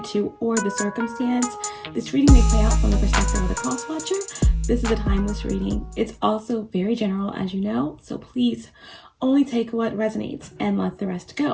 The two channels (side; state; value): both; identical; correlation 1.00